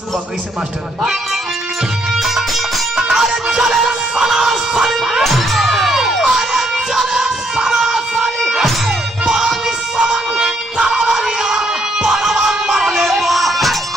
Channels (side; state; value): both; normal; correlation 0.72